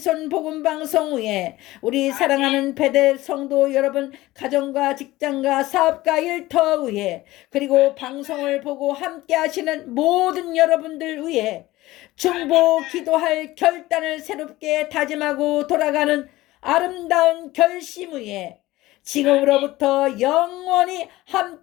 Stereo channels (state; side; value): quieter; right; 17.8 dB